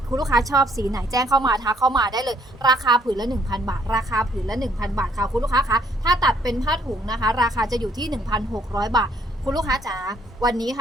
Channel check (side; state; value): both; normal; correlation 0.66